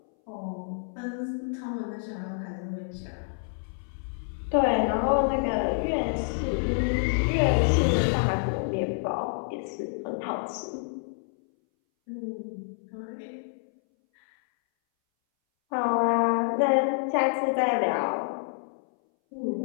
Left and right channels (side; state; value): right; silent; 59 dB below the other